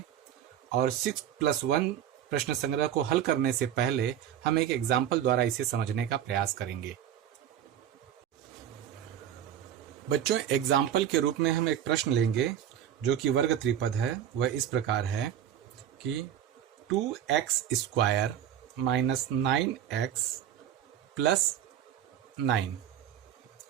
और 6+1 प्रश्न संग्रह को हल करने से पहले हम एक एग्जाम्पल द्वारा इसे समझने का प्रयास करेंगे। बच्चों, एग्जाम्पल के रूप में हम एक प्रश्न लेंगे जो कि वर्ग त्रिपद है। वह इस प्रकार है कि 2x square minus 9x plus 9।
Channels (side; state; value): left; quieter; 10.2 dB